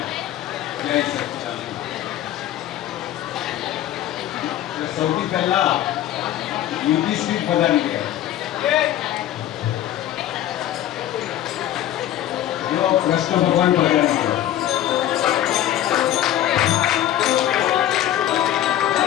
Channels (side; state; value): right; quieter; 12.4 dB